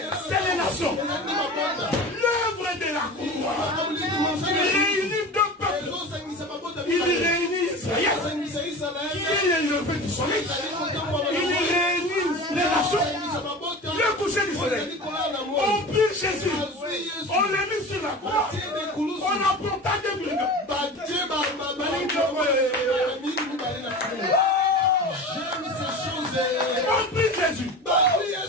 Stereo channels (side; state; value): both; normal; correlation 0.32